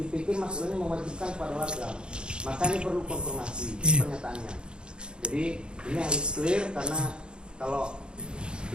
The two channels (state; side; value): late; left; 0.051 ms